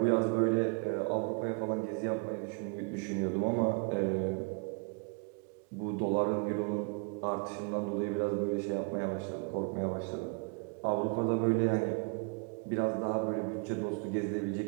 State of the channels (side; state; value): left; quieter; 35.8 dB